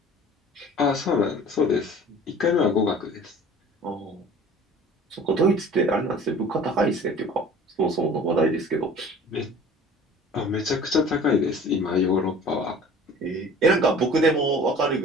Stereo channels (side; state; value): both; normal; correlation 0.45